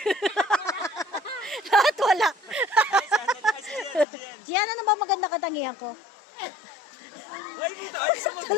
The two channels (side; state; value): right; drops out; at 4.0 s